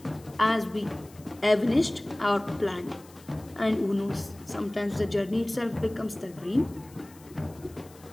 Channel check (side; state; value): left; noise; hiss, 24 dB below the sound